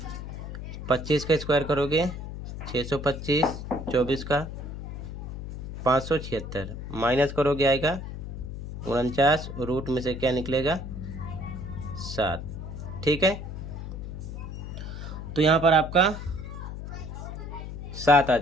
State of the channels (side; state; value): left; noise; hum, 8 dB below the sound